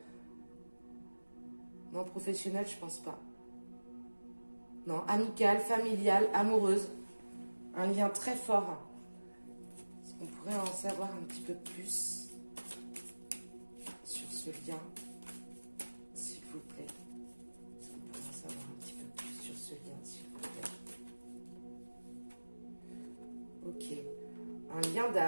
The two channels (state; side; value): inverted; both; correlation -1.00